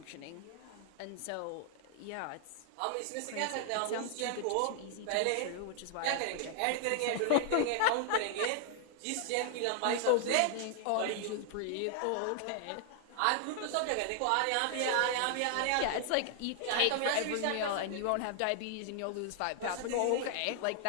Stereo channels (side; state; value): both; different; correlation 0.00